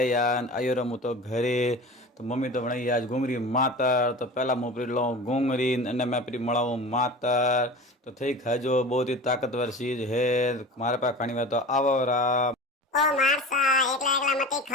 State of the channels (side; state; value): both; normal; correlation 0.34